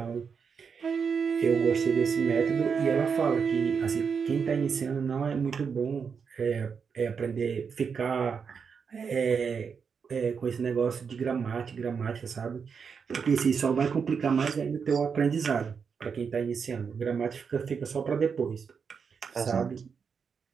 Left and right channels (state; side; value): quieter; left; 6.1 dB